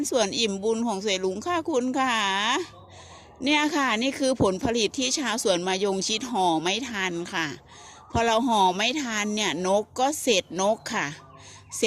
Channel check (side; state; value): both; identical; correlation 1.00